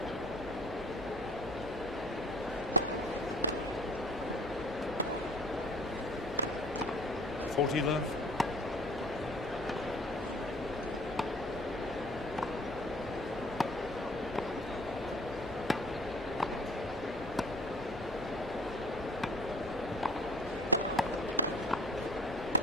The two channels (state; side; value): normal; both; correlation 0.50